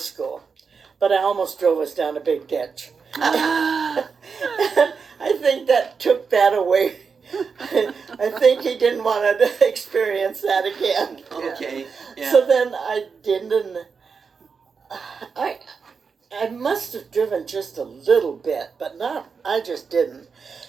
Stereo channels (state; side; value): quieter; left; 5.5 dB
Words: but I almost drove us down a big ditch. I think that took that away. I think he didn't want to experience that again. Okay. Yeah. So then I didn't. I must have driven just a little bit, but I just didn't.